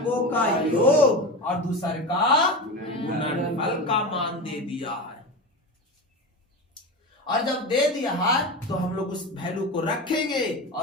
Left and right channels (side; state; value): both; normal; correlation 0.25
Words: का योग, और दूसरे का गुणनफल का मान दे दिया है। और जब दे दिया है तो हम लोग उस वैल्यू को रखेंगे